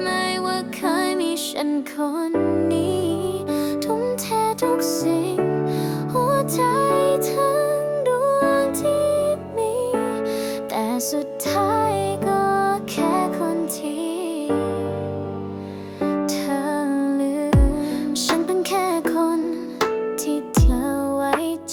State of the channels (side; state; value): both; identical; correlation 1.00